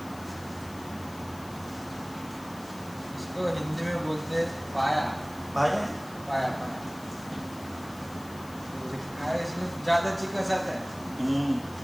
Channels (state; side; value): noise; left; hiss, 19 dB below the sound